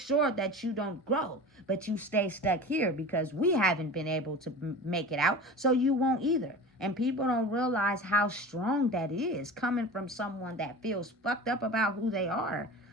that you don't grow, but you stay stuck here because we haven't been able to make it out, so you won't either. And people don't realize how strong that is coming from someone that feels fucked up about who they are.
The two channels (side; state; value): both; normal; correlation 0.34